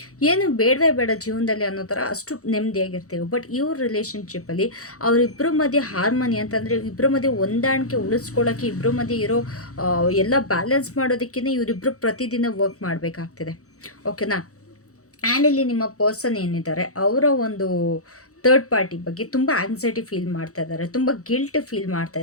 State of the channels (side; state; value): right; late; 0.65 ms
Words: ಏನು ಬೇಡವೇ ಬೇಡ ಜೀವನದಲ್ಲಿ ಅನ್ನೋ ಥರ ಅಷ್ಟು ನೆಮ್ಮದಿಯಾಗಿರ್ತೀವಿ. ಬಟ್ ಇವ್ರ ರಿಲೇಷನ್ಶಿಪ್ಪಲ್ಲಿ ಅವರಿಬ್ಬರ ಮಧ್ಯೆ ಹಾರ್ಮೋನಿ ಅಂತಂದರೆ, ಇಬ್ಬರ ಮಧ್ಯೆ ಹೊಂದಾಣಿಕೆ ಉಳಿಸ್ಕೊಳ್ಳೋಕ್ಕೆ, ಇಬ್ಬರ ಮಧ್ಯೆ ಇರೋ ಎಲ್ಲ ಬ್ಯಾಲೆನ್ಸ್ ಮಾಡೋದಕ್ಕೇ ಇವರಿಬ್ಬರು ಪ್ರತಿದಿನ ವರ್ಕ್ ಮಾಡಬೇಕಾಗ್ತಿದೆ. ಓಕೆನಾ. ಆ್ಯಂಡ್ ಇಲ್ಲಿ ನಿಮ್ಮ ಪರ್ಸನ್ ಏನಿದ್ದಾರೆ ಅವರ ಒಂದು ಥರ್ಡ್ ಪಾರ್ಟಿ ಬಗ್ಗೆ ತುಂಬ ಆಂಗ್ಸೈಟಿ ಫೀಲ್ ಮಾಡ್ತಾ ಇದ್ದಾರೆ, ತುಂಬ ಗಿಲ್ಟ್ ಫೀಲ್ ಮಾಡ್ತಾ